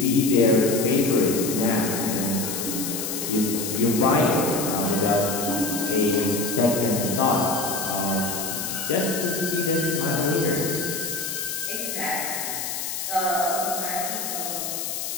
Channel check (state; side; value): noise; left; hiss, 4 dB below the sound